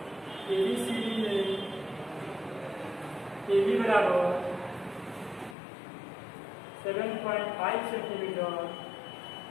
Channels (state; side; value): drops out; right; at 5.6 s